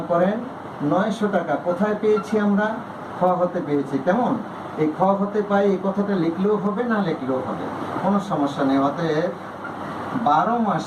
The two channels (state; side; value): identical; both; correlation 1.00